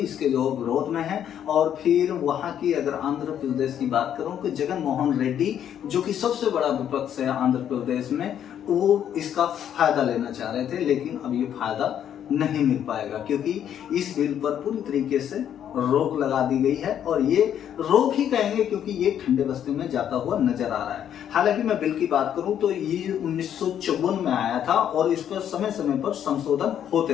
जो विरोध में है। और फिर वहां की अगर आंध्र प्रदेश की बात करूं तो जगन मोहन रेड्डी जो कि सबसे बड़ा विपक्ष है आंध्र प्रदेश में, वो इसका फायदा लेना चाह रहे थे, लेकिन अब ये फायदा नहीं मिल पाएगा क्योंकि इस बिल पर पूरी तरीके से रोक लगा दी गई है। और ये रोक ही कहेंगे क्योंकि ये ठंडे बस्ते में जाता हुआ नजर आ रहा है। हालांकि मैं बिल की बात करूं तो ये 1954 में आया था और इस पर समय समय पर संशोधन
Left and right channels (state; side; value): quieter; right; 9.7 dB